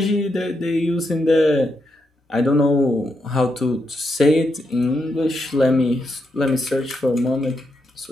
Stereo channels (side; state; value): both; normal; correlation 0.82